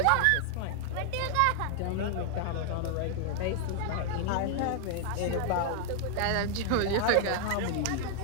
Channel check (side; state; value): both; different; correlation 0.00